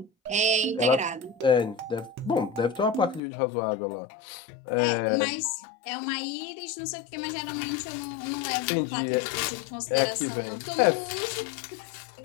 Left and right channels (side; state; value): right; drops out; at 3.2 s